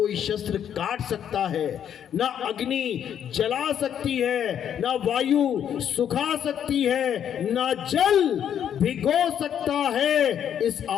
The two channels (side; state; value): right; quieter; 9.3 dB